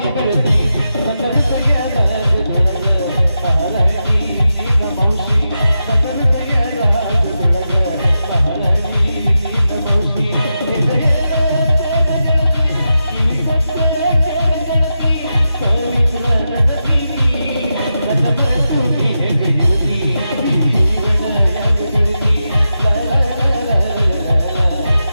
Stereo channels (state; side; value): inverted; both; correlation -0.89